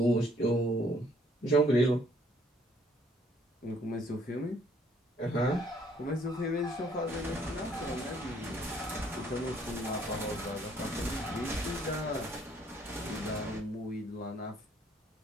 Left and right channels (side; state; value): both; normal; correlation 0.64